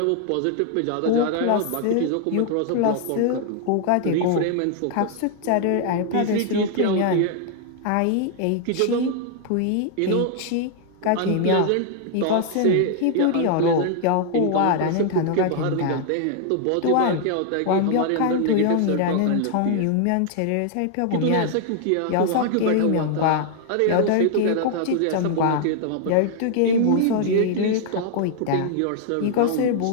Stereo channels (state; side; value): different; both; correlation 0.00